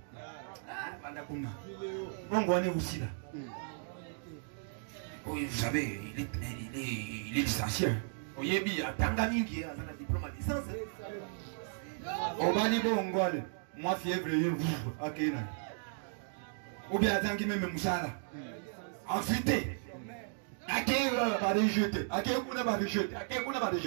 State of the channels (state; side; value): silent; left; digital silence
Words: Bongo on est aussi là. Oui, vous savez, il est licencié. Oyebi atanga mingi azana diplôme à licence. Obani bongo ale. Moi fièvre vous akena. Ou bien atangi même musala. Ensuite, akena va rejeter. Akena va rejeter. Akena va